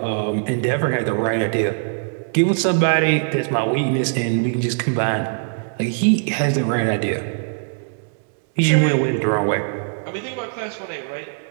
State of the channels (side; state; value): left; silent; digital silence